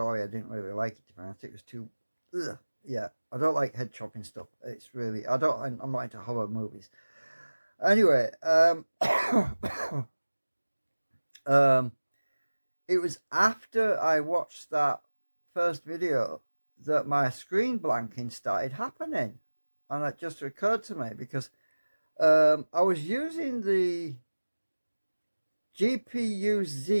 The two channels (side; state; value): both; inverted; correlation -1.00